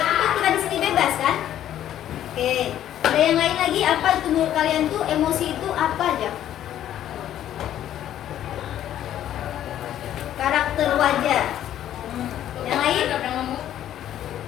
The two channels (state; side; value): quieter; right; 11.5 dB